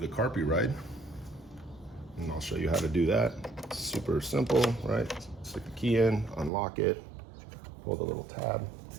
CarPuride. And I'll show you how to do that. Super simple, right? Stick the key in, unlock it, pull the little tab.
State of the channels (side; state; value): left; drops out; at 6.5 s